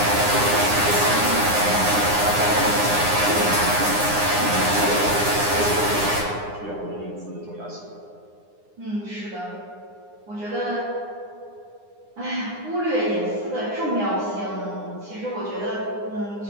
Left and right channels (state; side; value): late; left; 9.8 ms